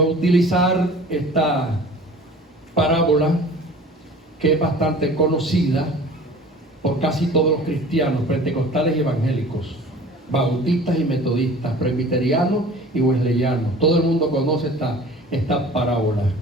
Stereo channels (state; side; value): normal; both; correlation 0.44